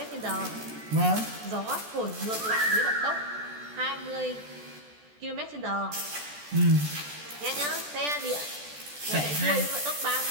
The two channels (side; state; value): left; late; 14 ms